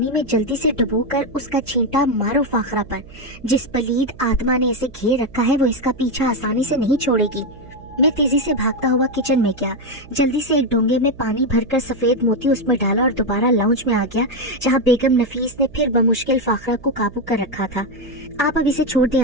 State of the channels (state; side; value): noise; right; hum, 21 dB below the sound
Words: में जल्दी से डुबोकर उसका छींटा मारो फाखरा पर। जिस पलीद आत्मा ने इसे घेर रखा है वो इसका पीछा आसानी से नहीं छोड़ेगी। मैं तेजी से भागता हुआ किचन में गया। जल्दी से एक डोंगे में पानी भरकर सफेद मोती उसमें डाला और दोबारा लाउंज में आ गया, जहाँ बेगम नफीस ने फिर बमुश्किल फाखरा को काबू कर रखा था। आप अब इसे छोड़ दें